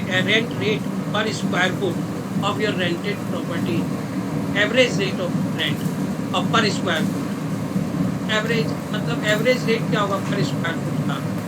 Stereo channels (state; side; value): identical; both; correlation 1.00